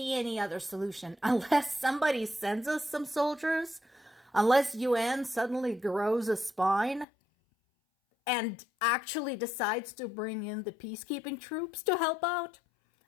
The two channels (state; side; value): drops out; right; at 7.1 s